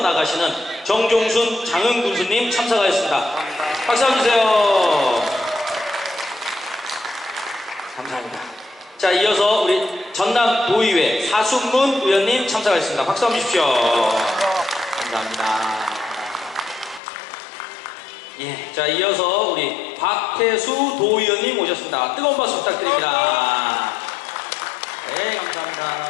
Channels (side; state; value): right; drops out; at 17.0 s